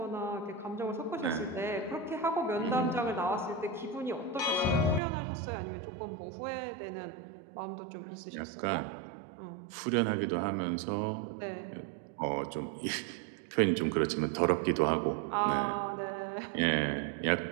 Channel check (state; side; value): drops out; left; at 5.0 s